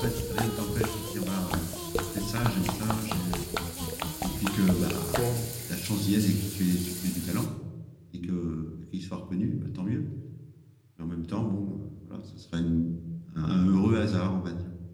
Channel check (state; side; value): identical; both; correlation 1.00